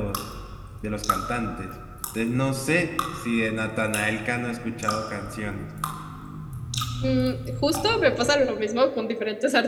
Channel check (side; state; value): both; identical; correlation 1.00